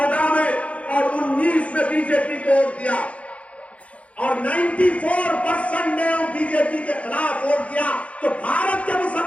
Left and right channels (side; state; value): right; late; 0.064 ms